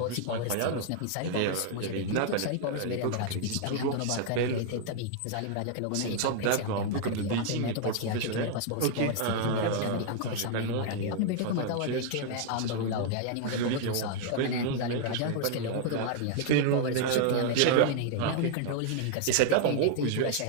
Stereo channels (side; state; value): both; different; correlation 0.00